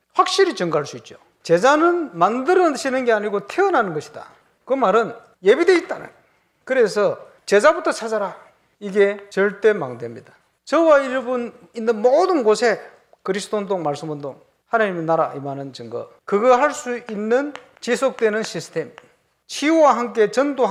확실히 증거할 수 있죠. 제자는 만들어지는 게 아니고 태어나는 것이다. 그 말은 예비되어 있다는. 그래서 제자부터 찾아라. 이게 절대망대입니다. 저와 여러분 있는 모든 곳에 그리스도운동, 말씀운동, 하나님의 나라 임하는 증거, 그거 할 수 있는 지속되는 시스템, 치유와 함께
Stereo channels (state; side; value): identical; both; correlation 1.00